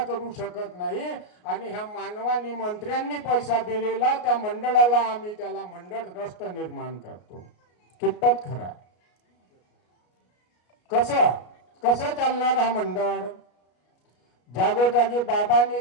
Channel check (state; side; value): late; right; 33 ms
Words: करू शकत नाही आणि ह्या मानवांनी मंत्र्यांनी पैसा दिलेला त्या मंडळाला आम्ही त्याला मंडळ ट्रस्ट निर्माण करतो. कितपत खरा? कसं चालणार हा मंडळ? जागोजागी बाबांनी